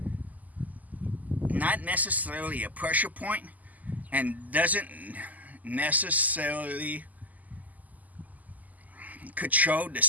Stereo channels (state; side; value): late; left; 0.079 ms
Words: not necessarily a pressure point and doesn't necessarily control the